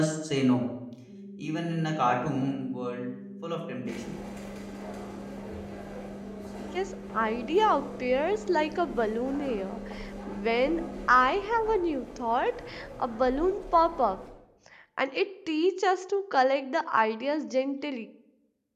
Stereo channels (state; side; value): identical; both; correlation 1.00